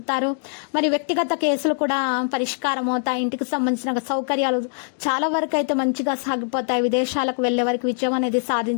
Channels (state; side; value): silent; right; digital silence